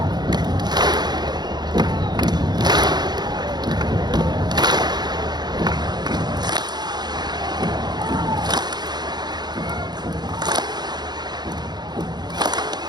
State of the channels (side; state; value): left; late; 0.20 ms